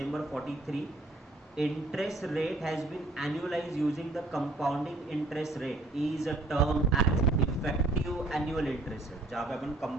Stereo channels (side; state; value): left; quieter; 3.0 dB